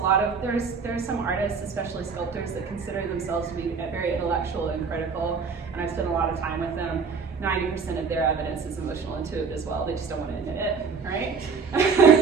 some artists, especially sculptors, that consider themselves to be very intellectual and critical, and I've spent a lot of time with them. 90% of their evidence is emotional intuitive as well. They just don't want to admit it, right?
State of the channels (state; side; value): quieter; left; 5.4 dB